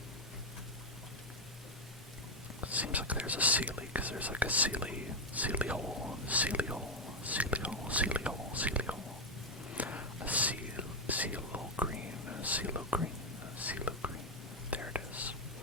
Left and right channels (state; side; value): normal; both; correlation 0.05